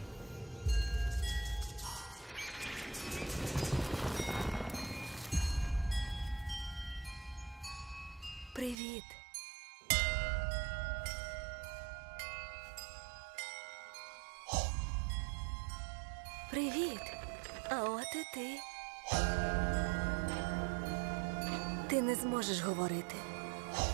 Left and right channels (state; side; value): drops out; left; at 8.8 s